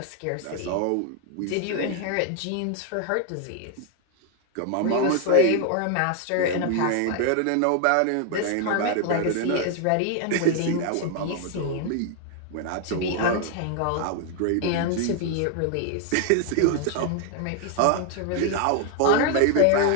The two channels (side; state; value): both; different; correlation 0.00